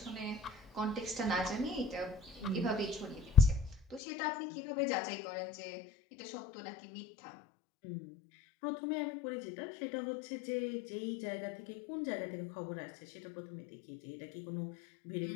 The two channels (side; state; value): right; drops out; at 4.0 s